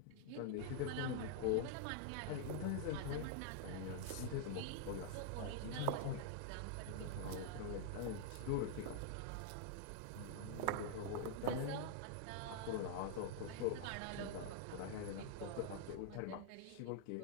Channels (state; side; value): different; both; correlation -0.01